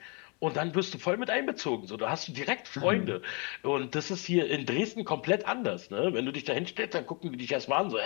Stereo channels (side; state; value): right; quieter; 32.9 dB